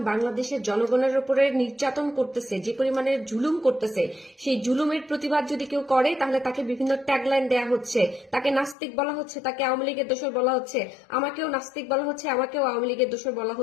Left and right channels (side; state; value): right; drops out; at 8.8 s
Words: বাংলাদেশের জনগণের উপরে নির্যাতন করতেছে, যে পরিমাণে জুলুম করতেছে, সেই জুলুমের প্রতিবাদ যদি কেউ করে তাহলে তাকে বিভিন্ন ট্যাগলাইন দেয়া হচ্ছে, তাকে নাস্তিক বলা হচ্ছে, তাকে আওয়ামী লীগের দোসর বলা হচ্ছে, আমাকেও নাস্তিক বলা হচ্ছে, আমাকেও আওয়ামী লীগের দোসর বলা